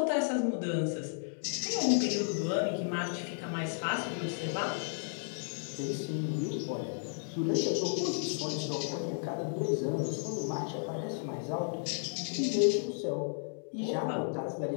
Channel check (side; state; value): right; silent; digital silence